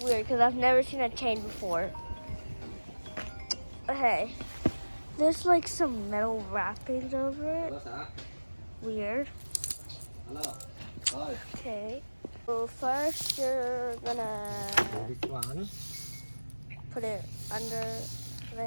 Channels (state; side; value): inverted; both; correlation -1.00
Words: weird because I've never seen a chain before. Okay, there's like some metal wrappings over it. Weird. Okay. So first you're gonna put it under